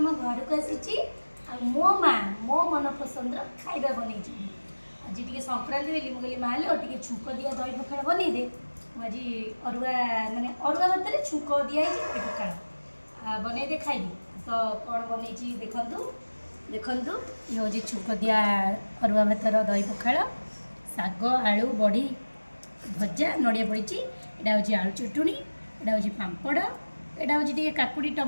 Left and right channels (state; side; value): inverted; both; correlation -1.00